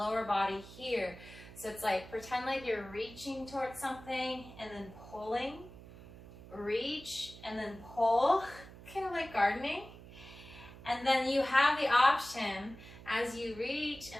body here. So it's like, pretend like you're reaching towards something and then pulling. Reach and then pull, kind of like gardening. And then you have the option, as you reach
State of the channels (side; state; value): right; noise; hum, 17 dB below the sound